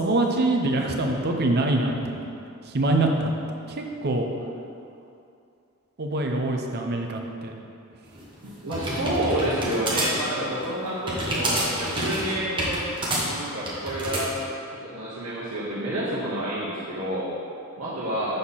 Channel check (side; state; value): both; normal; correlation 0.31